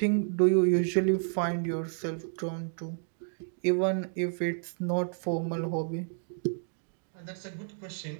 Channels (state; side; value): silent; left; digital silence